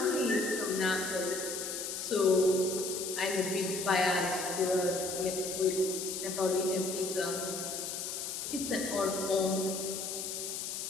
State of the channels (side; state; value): left; noise; hiss, 4 dB below the sound